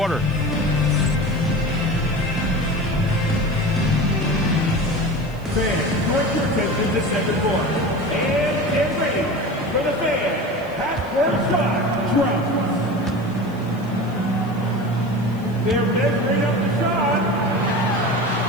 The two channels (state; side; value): noise; left; hiss, 27 dB below the sound